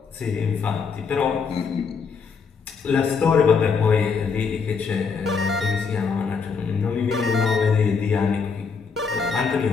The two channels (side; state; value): right; quieter; 5.5 dB